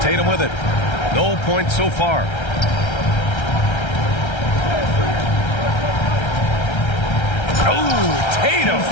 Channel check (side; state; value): right; late; 1.3 ms